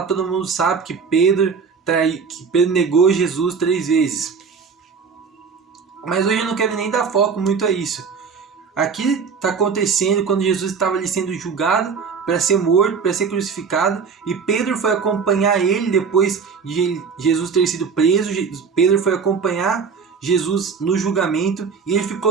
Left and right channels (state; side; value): quieter; left; 5.7 dB